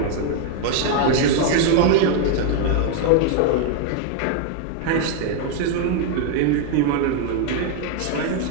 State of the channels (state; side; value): different; both; correlation 0.01